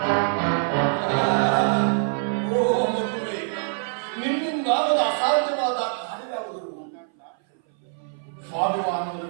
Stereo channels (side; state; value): left; silent; 58 dB below the other